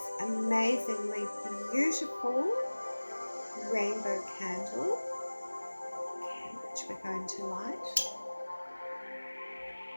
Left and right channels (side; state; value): both; inverted; correlation -1.00